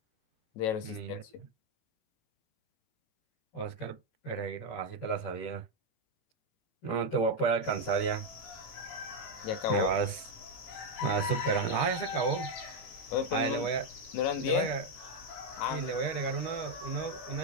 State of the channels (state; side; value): late; right; 18 ms